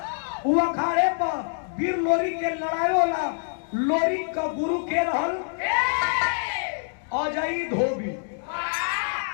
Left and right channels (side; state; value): right; silent; digital silence